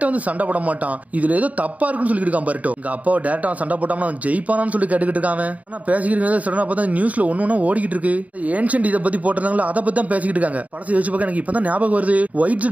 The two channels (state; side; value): late; left; 0.070 ms